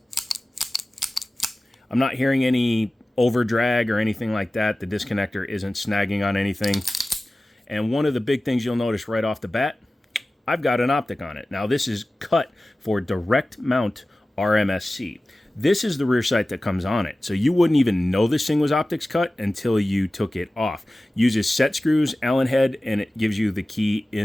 I'm not hearing any over drag or anything like that. The disconnector isn't snagging on anything. And one of the big things you'll notice right off the bat, I've got an optic on it. Now this is cut for direct mount RMSC. This is the rear sight that comes on it. So you wouldn't even know this thing was optics cut until you took it off. Uses set screws, Allen head, and it gives you the key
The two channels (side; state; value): both; normal; correlation 0.96